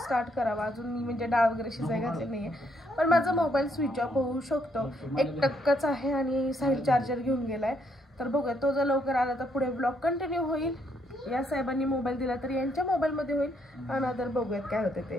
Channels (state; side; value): normal; both; correlation 0.73